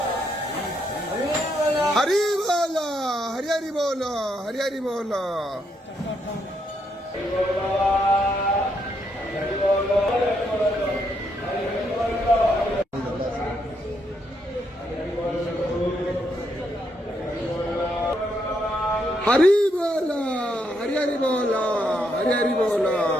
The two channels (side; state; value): both; normal; correlation 0.77